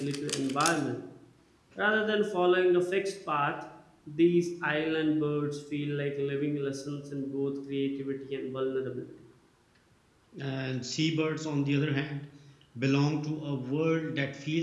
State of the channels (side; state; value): both; identical; correlation 1.00